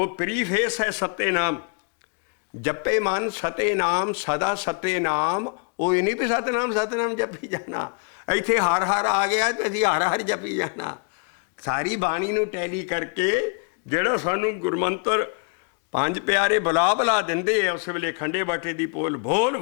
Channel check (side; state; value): right; quieter; 37.1 dB